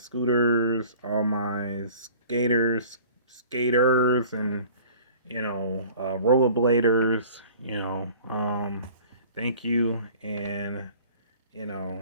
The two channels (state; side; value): inverted; both; correlation -0.48